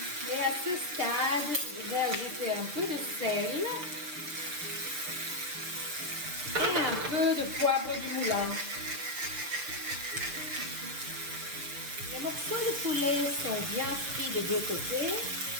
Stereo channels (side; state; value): left; late; 6.7 ms